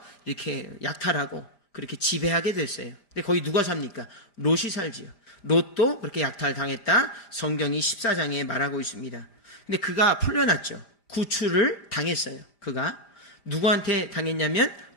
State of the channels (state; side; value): late; right; 5.0 ms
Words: 이렇게 약탈하고 그렇게 지배하게 됐어요. 근데 거기 누가 삽니까? 롯이 살지요. 롯도 그렇게 약탈당했다. 성경이 14장에 말하고 있습니다. 근데 그가 풀려났죠. 구출을 당했어요. 그가 누구한테 당했냐면